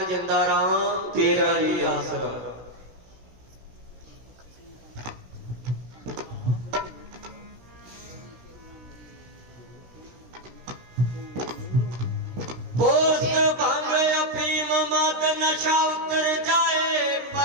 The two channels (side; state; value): left; late; 16 ms